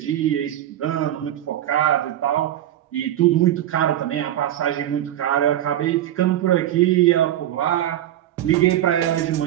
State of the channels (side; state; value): left; quieter; 12.4 dB